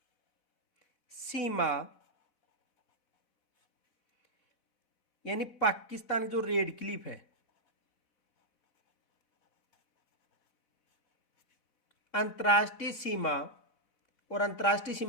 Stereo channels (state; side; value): late; right; 4.0 ms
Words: सीमा यानी पाकिस्तान की जो रेड क्लिफ है, अंतर्राष्ट्रीय सीमा, और अंतर्राष्ट्रीय